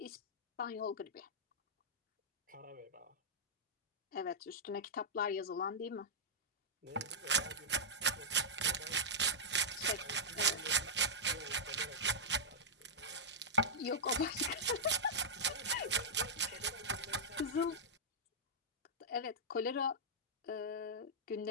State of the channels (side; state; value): both; normal; correlation -0.10